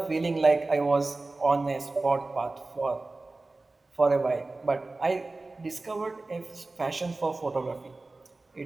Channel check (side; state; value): left; quieter; 3.2 dB